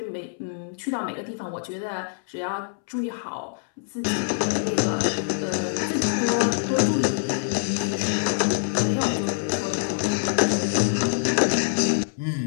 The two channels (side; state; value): right; silent; 62 dB below the other